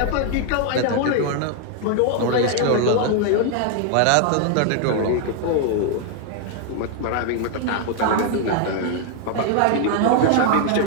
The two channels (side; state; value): both; different; correlation 0.00